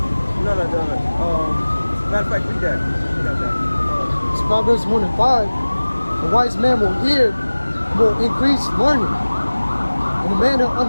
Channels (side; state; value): both; inverted; correlation -1.00